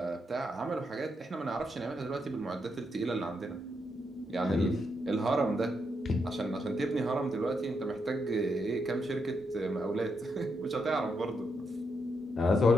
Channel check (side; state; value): both; normal; correlation 0.81